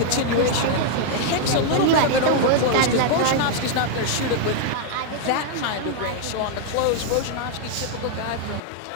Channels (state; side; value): different; both; correlation 0.00